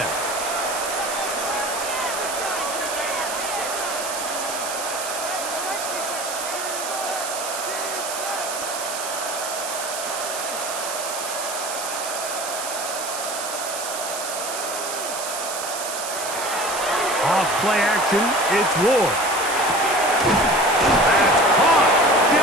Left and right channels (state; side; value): noise; right; hiss, 6 dB below the sound